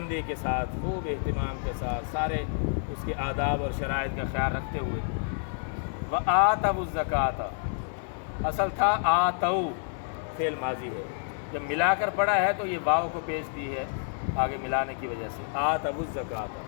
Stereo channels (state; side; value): silent; right; digital silence